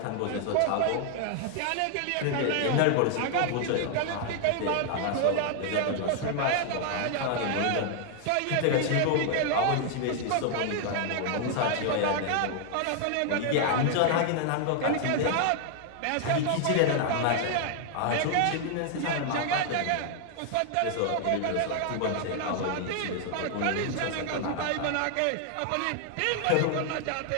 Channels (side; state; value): both; different; correlation 0.00